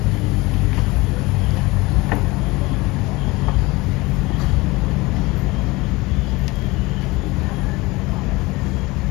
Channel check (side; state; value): right; quieter; 22.3 dB